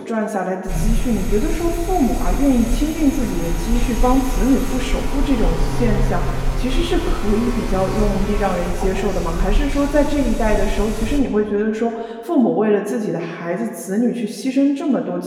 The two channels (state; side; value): identical; both; correlation 1.00